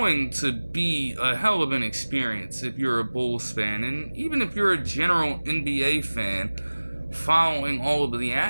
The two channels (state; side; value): inverted; both; correlation -1.00